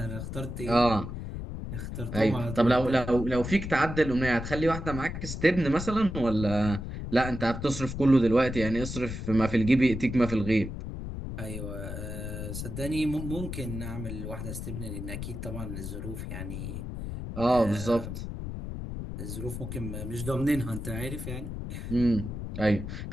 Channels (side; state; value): left; noise; rumble, 7 dB below the sound